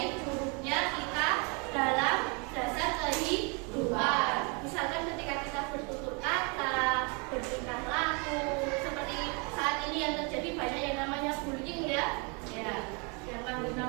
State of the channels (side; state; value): left; quieter; 33.1 dB